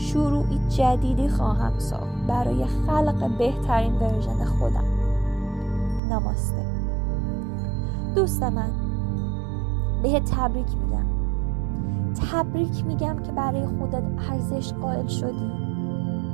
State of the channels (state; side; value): drops out; left; at 6.0 s